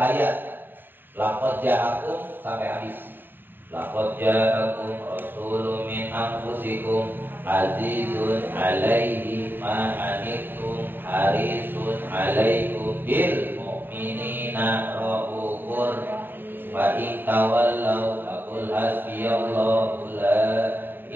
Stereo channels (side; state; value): left; late; 0.095 ms